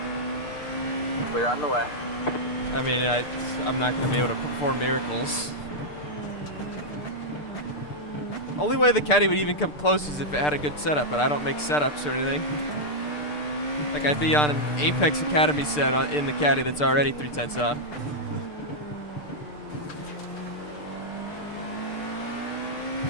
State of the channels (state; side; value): late; right; 6.7 ms